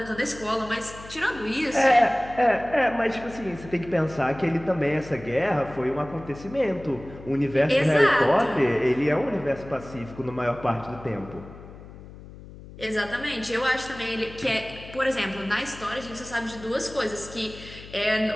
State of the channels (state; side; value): noise; left; hum, 16 dB below the sound